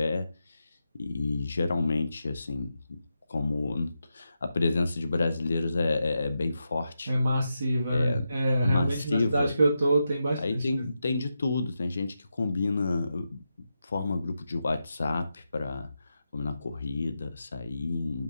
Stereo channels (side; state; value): both; inverted; correlation -0.87